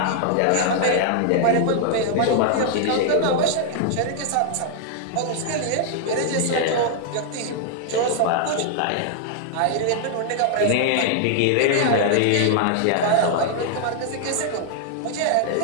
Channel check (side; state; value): both; different; correlation 0.00